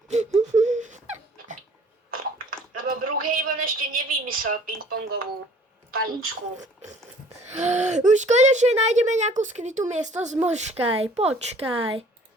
Lebo Brookhaven ešte nevymyslel ping-pongovú paličku. Už konečne nájdeme nejakú skrytú miestnosť, počkaj.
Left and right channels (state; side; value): normal; both; correlation 0.53